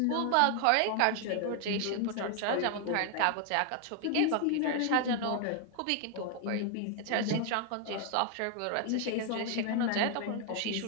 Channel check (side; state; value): both; different; correlation 0.00